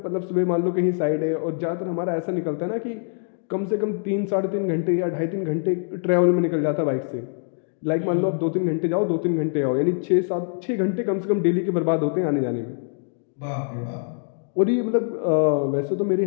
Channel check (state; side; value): silent; right; digital silence